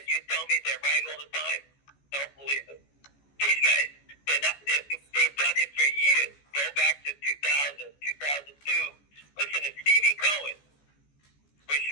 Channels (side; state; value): right; late; 14 ms